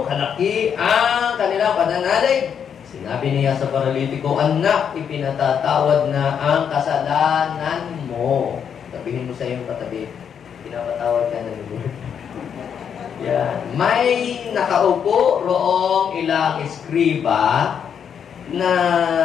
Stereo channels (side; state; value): right; quieter; 7.7 dB